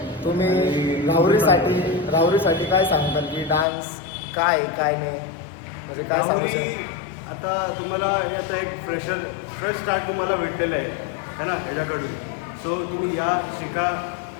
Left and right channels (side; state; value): right; drops out; at 3.7 s